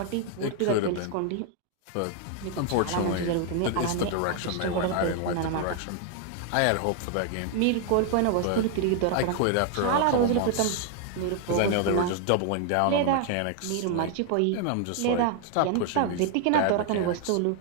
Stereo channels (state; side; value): different; both; correlation 0.00